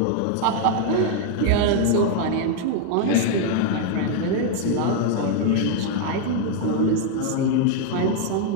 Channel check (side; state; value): both; different; correlation 0.00